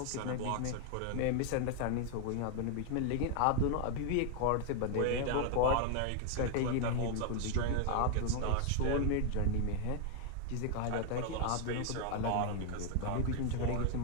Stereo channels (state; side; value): different; both; correlation 0.00